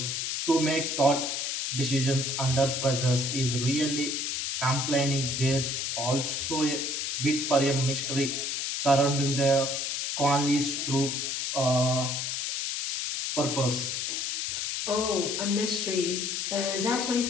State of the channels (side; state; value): left; noise; hiss, 1 dB below the sound